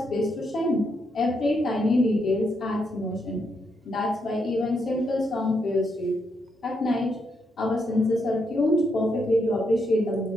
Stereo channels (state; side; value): normal; both; correlation 0.79